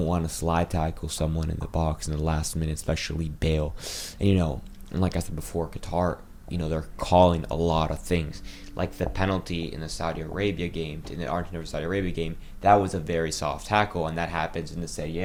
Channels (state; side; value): identical; both; correlation 1.00